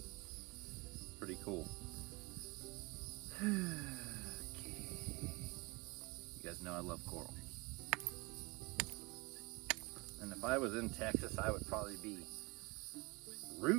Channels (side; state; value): left; quieter; 25.8 dB